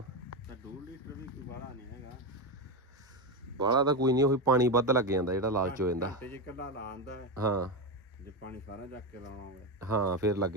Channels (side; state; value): both; normal; correlation 0.13